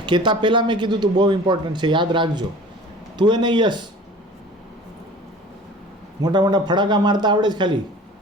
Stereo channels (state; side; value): normal; both; correlation 0.43